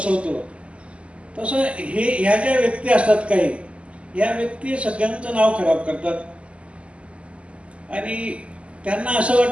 तसं ह्या ज्या व्यक्ती असतात काही, या व्यक्ती सगळ्यांचं नाव खराब करतात आणि त्यांना असं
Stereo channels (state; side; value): late; left; 0.059 ms